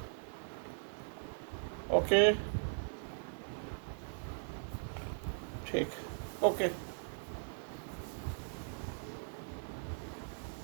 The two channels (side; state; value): left; silent; 52 dB below the other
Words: ओके, ठीक, ओके.